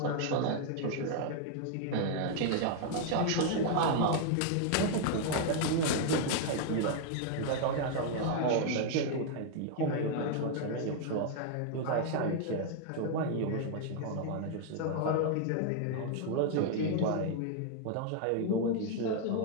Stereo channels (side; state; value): both; different; correlation 0.00